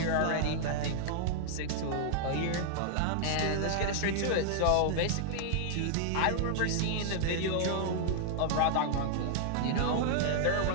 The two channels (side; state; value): both; different; correlation -0.01